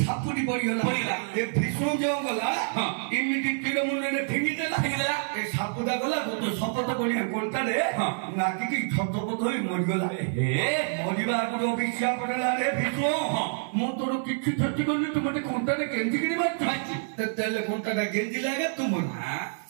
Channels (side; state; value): left; silent; digital silence